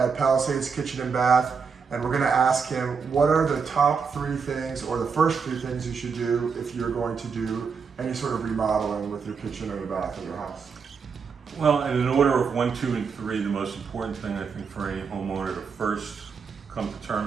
Palisades Kitchen and Bath, and we're going to ask him what are the top 3 things or the first 3 things you should do if you're going to do any sort of remodeling with your kitchen or your bath in your house. Well, in an order of 1, 2, and 3, the most important thing I think for any homeowner to first come to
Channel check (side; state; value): left; quieter; 5.8 dB